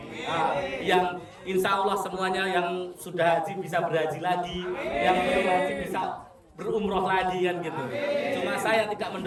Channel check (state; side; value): identical; both; correlation 1.00